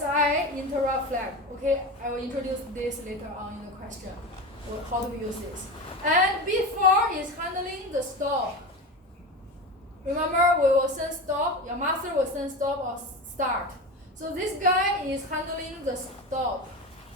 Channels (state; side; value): normal; both; correlation 0.25